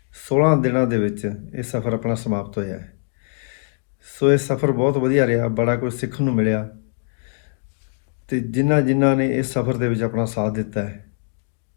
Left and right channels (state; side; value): silent; right; 64 dB below the other